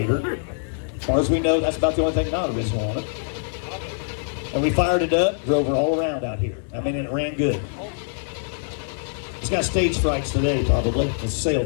As far as we know, that's about the only thing not original on it. And we fired it up, drove her all around out here. I mean, it ran good. It's got stage frights today, probably. It's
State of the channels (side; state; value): right; silent; 63 dB below the other